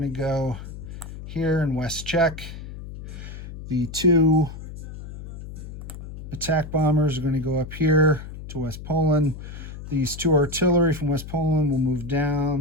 to go here in West Czech. The 2 attack bombers are going to go up here to West Poland. These 2 artillery from West Poland will move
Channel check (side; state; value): left; noise; hum, 11 dB below the sound